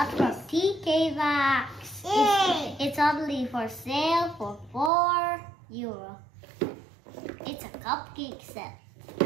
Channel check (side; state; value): left; drops out; at 4.9 s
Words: from TK Maxx. It's only for sale for €4. It's a cupcake set,